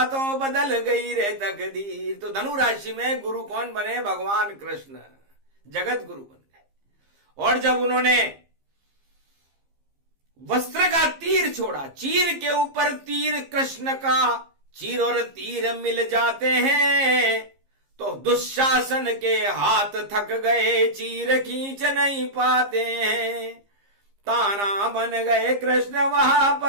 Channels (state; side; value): late; left; 15 ms